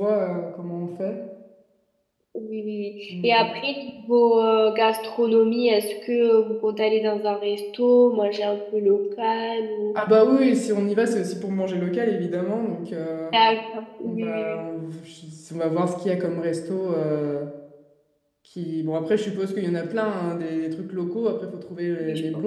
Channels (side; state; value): both; identical; correlation 1.00